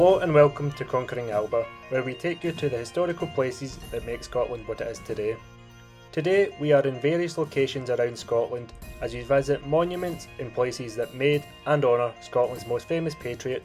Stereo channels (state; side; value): identical; both; correlation 1.00